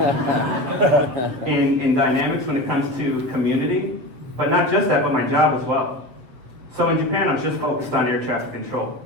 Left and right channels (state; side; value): late; left; 7.6 ms